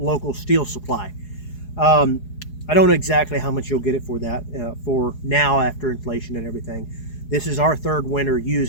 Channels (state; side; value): late; right; 4.8 ms